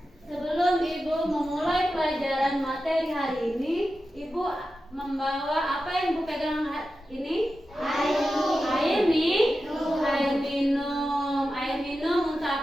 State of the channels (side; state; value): both; normal; correlation 0.92